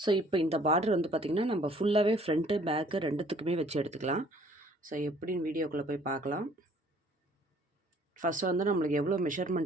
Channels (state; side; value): normal; both; correlation 0.58